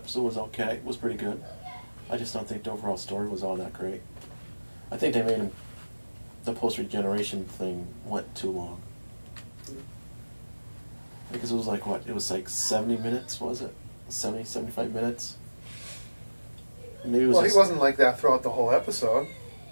was okay. It was pretty good. I just don't think the overall story was all that great. I think they made the post-regeneration thing went too long. Because it was like, what? It was like 70 minutes, was it? 70, 75 minutes? Maybe it was he wasn't like that throughout the whole episode.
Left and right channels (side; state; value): both; inverted; correlation -1.00